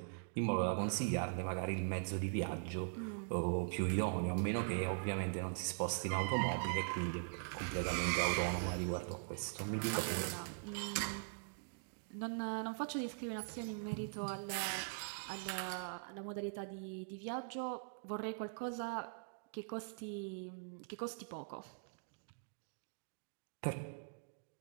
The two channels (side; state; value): left; silent; digital silence